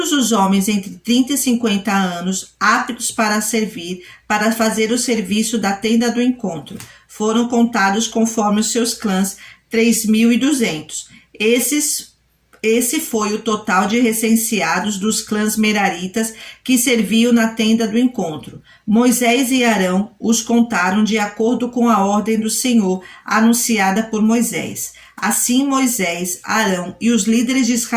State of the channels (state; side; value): identical; both; correlation 1.00